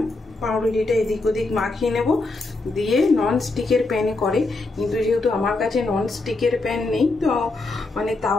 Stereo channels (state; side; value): quieter; right; 3.2 dB